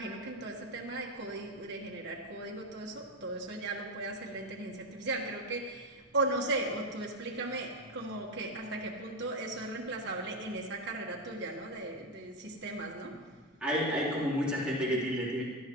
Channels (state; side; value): normal; both; correlation 0.13